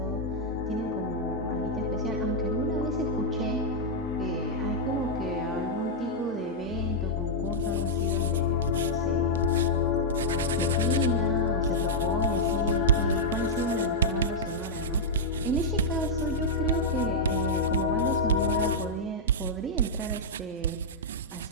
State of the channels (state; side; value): normal; both; correlation -0.05